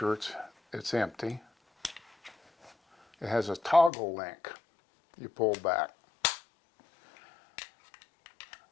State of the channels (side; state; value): right; drops out; at 3.9 s